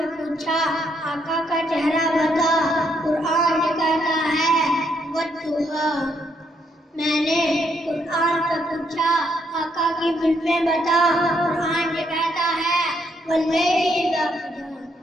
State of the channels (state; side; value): normal; both; correlation 0.74